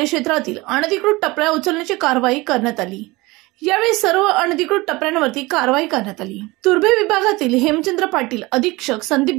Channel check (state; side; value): quieter; left; 22.2 dB